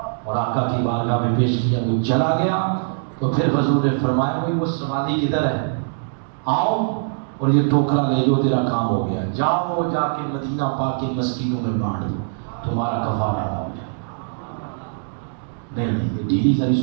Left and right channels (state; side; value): silent; left; digital silence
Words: اور آقا کی بارگاہ میں پیش کیا، وہ چلا گیا۔ تو پھر حضور نے فرمایا بھائی وہ سواری کدھر ہے؟ آؤ اور یہ ٹوکرا لے جو، تیرا کام ہو گیا، جاؤ جا کے مدینہ پاک کے مسکینوں میں بانٹ دو، تمہارا کفارہ ادا ہو جائے گا۔ نہیں یہ ڈیلی ساری